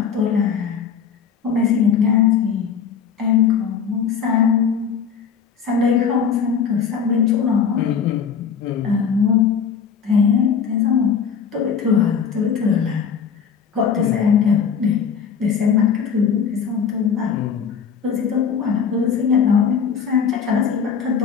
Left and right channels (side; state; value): right; quieter; 6.9 dB